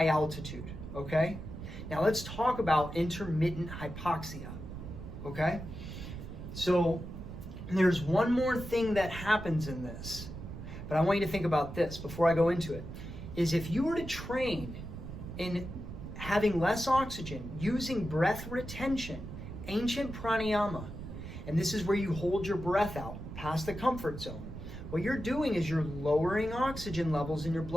altitude, okay? Now let's talk about intermittent hypoxia. Okay, so there's one more thing that happens in this, but I want you to think about this before I go into it, is if you were to train in having less oxygen, using breath retention, ancient pranayama, and this is where you hold your breath out past the comfort zone, what you're doing is you're lowering oxygen levels in your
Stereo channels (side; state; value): right; noise; rumble, 10 dB below the sound